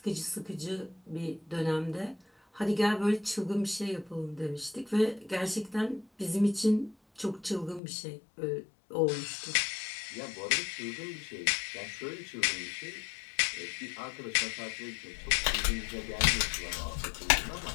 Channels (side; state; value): right; drops out; at 7.8 s